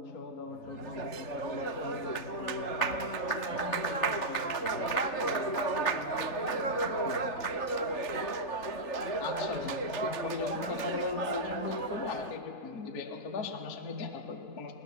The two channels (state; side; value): late; right; 3.4 ms